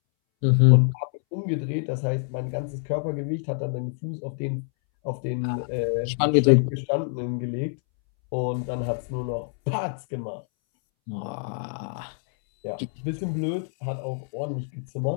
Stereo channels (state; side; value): silent; right; 61 dB below the other